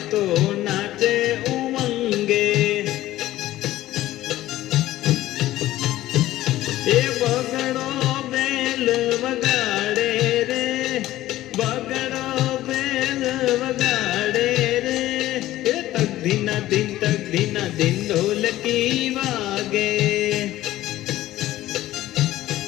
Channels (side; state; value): right; quieter; 15.2 dB